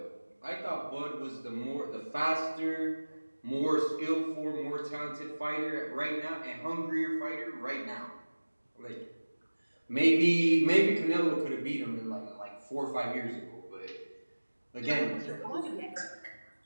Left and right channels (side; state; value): both; inverted; correlation -1.00